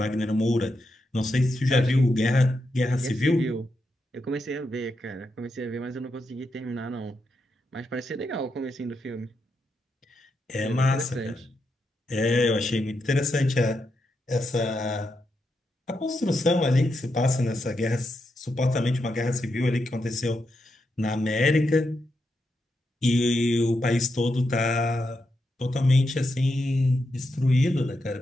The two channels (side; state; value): both; normal; correlation 0.84